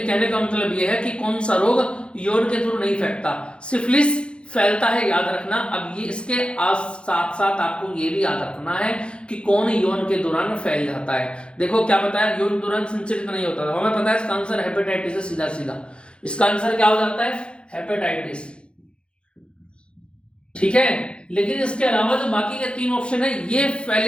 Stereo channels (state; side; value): late; right; 0.056 ms